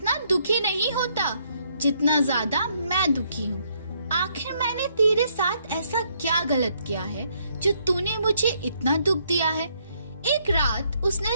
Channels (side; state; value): both; inverted; correlation -0.71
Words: दुखी नहीं होता जितना ज्यादा मैं दुखी हूँ। आखिर मैंने तेरे साथ ऐसा क्या गलत किया है जो तूने मुझे इतना दुख दिया है? एक रात